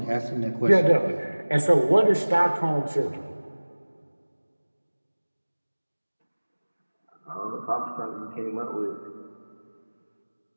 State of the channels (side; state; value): both; inverted; correlation -1.00